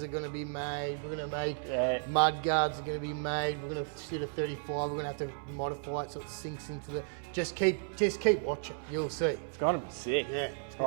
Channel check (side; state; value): left; silent; 55 dB below the other